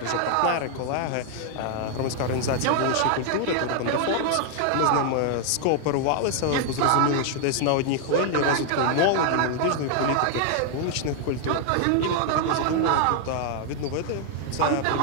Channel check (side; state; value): both; different; correlation 0.00